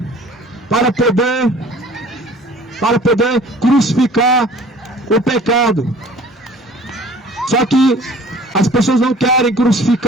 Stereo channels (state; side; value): normal; both; correlation 0.48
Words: para poder crucificar o pecado. Só que as pessoas não querem